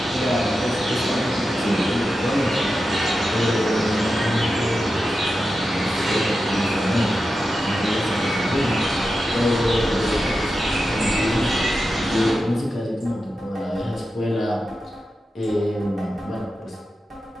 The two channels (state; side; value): normal; both; correlation 0.90